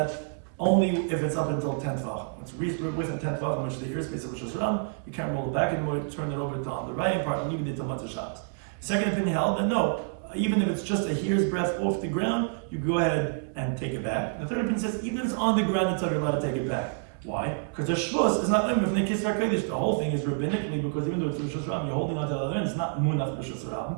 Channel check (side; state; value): left; silent; 59 dB below the other